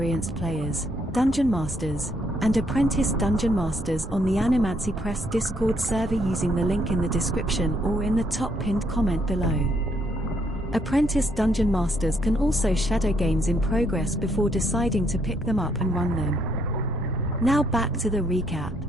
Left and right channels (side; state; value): both; normal; correlation 0.72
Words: players, dungeon masters, and apprentice dungeon masters on the Animancy Press Discord server using the link in the description or in the top pinned comment below. Apprentice dungeon masters can also shadow games in progress before deciding to pick them up and run them. Now back to the recap.